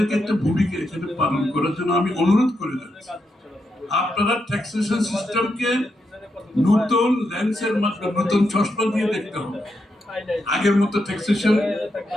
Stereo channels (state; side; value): normal; both; correlation 0.83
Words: একটা ভূমিকা এখানে পালন করার জন্য আমি অনুরোধ করে যাচ্ছি। আপনারা ট্যাক্সেশন সিস্টেমকে নতুন লেন্সের মাধ্যমে, নতুন চশমা দিয়ে দেখতে হবে। আগের মতো ট্যাক্সেশন